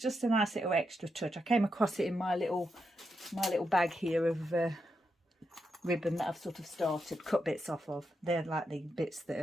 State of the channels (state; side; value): normal; both; correlation 0.84